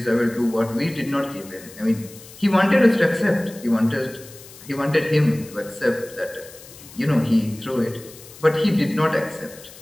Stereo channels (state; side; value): noise; left; hiss, 19 dB below the sound